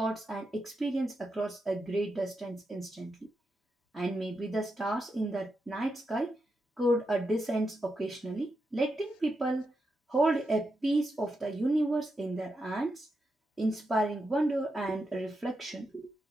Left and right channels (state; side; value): normal; both; correlation 0.86